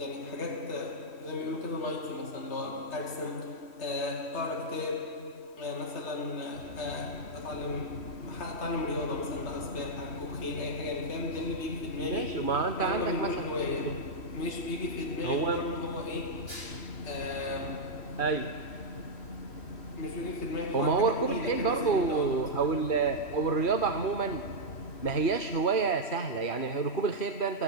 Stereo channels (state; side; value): late; right; 3.1 ms